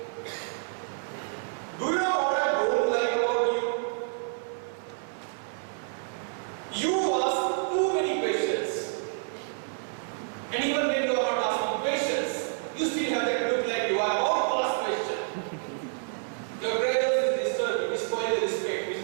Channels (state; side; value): silent; left; 58 dB below the other